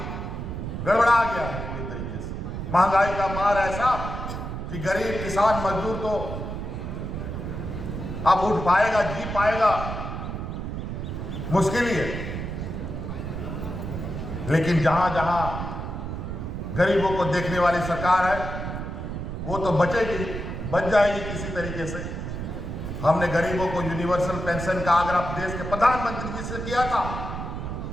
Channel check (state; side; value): noise; right; rumble, 5 dB below the sound